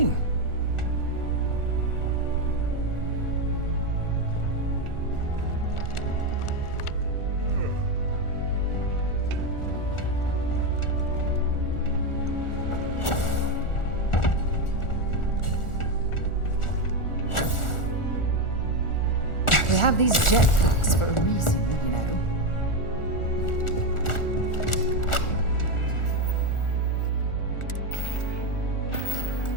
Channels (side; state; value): right; late; 1.4 ms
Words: We have these jetpacks for a reason, you know.